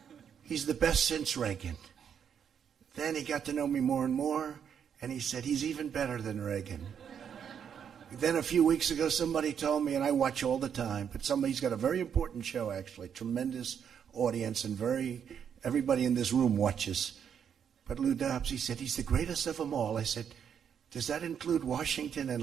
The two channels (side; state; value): left; quieter; 8.0 dB